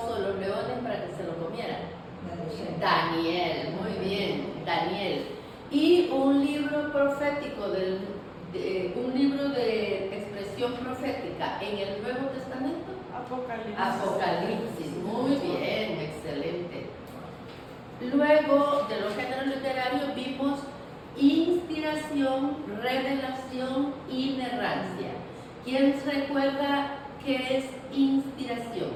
de los leones para que se lo comieran. Daniel, muy bien, Daniel. Y un libro profético, un libro de expresión profética en el Nuevo Testamento. Apocalipsis. Apocalipsis, muy bien, excelente. Luego de los géneros literarios vimos inspiración, revelación, inerrancia. ¿Quién recuerda qué es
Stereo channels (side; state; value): both; identical; correlation 1.00